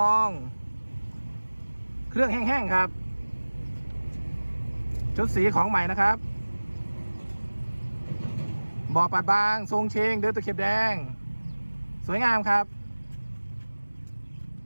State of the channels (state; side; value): inverted; both; correlation -1.00